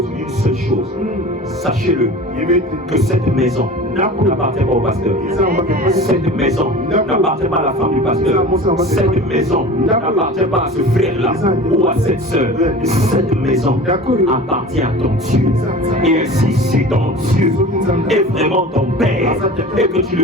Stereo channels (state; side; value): normal; both; correlation 0.37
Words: d'une seule chose. Sachez-le, que cette maison n'appartient pas au pasteur. Cette maison n'appartient pas à la femme du pasteur. Cette maison n'appartient pas à ce frère-là ou à cette sœur. Cette maison appartient à ton Dieu. Et ainsi, si ton Dieu est vraiment ton Père et que tu